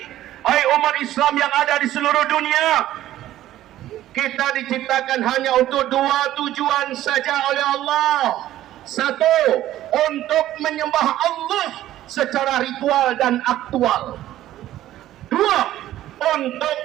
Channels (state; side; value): quieter; left; 13.7 dB